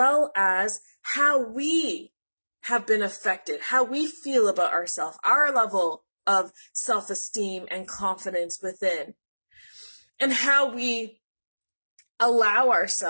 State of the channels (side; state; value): both; inverted; correlation -1.00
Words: as how we have been affected, how we feel about ourselves, our level of self-esteem and confidence within, and how we allow